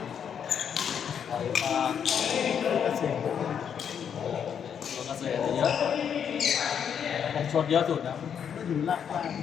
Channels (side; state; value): right; quieter; 7.9 dB